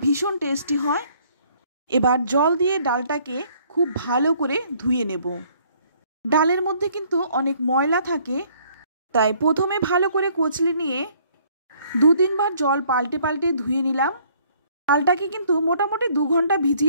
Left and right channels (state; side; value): inverted; both; correlation -0.62